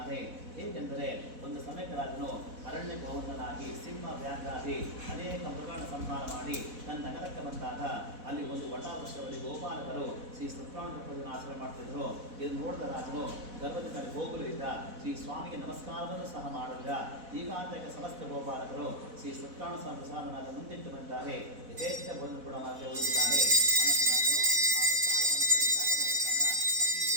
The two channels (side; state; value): left; late; 4.1 ms